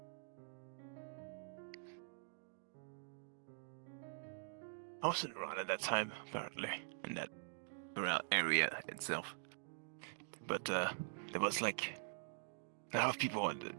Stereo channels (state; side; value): silent; left; digital silence